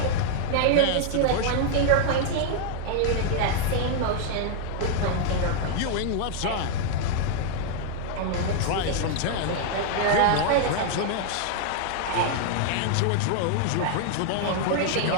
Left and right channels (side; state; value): both; different; correlation 0.00